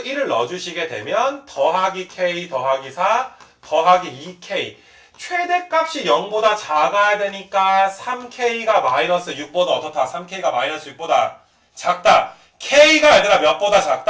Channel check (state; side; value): identical; both; correlation 1.00